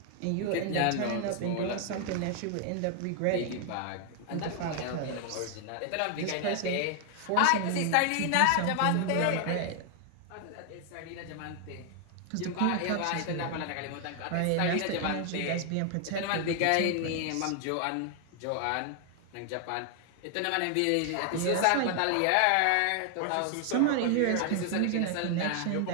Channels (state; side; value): different; both; correlation 0.00